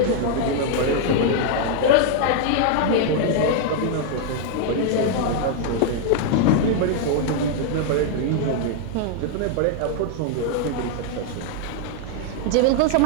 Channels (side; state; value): both; different; correlation 0.00